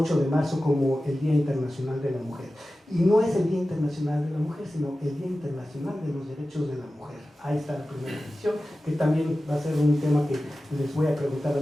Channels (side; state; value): both; normal; correlation 0.95